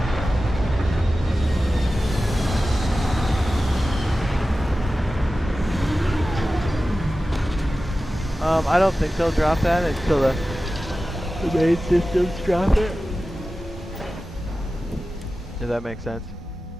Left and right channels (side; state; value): both; normal; correlation 0.94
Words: I don't think they'll drop that until the main systems drop it. Does that make sense?